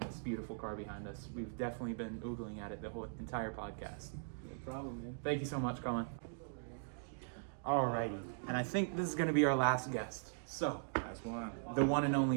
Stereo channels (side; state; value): left; silent; digital silence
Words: this beautiful car behind us. We've definitely been oogling at it the whole entire podcast. No problem, man. Thank you so much, Colin. Alrighty, and I think this is going to be our last guest. So, That's one. the one and